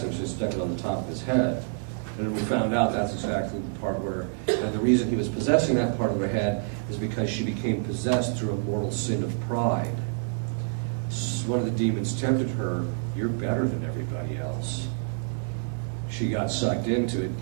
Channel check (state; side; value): silent; left; digital silence